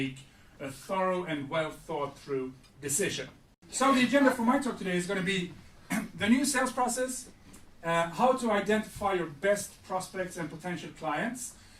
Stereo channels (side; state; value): both; identical; correlation 1.00